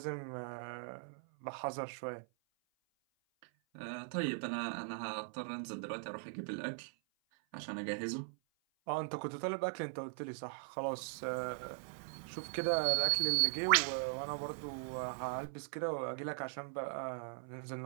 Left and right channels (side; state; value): left; silent; 51 dB below the other